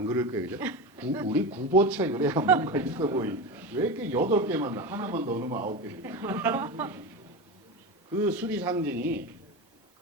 그럴 거예요, 그죠? 우리 9보채 그래야 뭔가 있어 보이. 왜 이렇게 8개만 나? 하나만 더 넣으면 9개. 그 수리 상징이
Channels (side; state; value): both; normal; correlation 0.22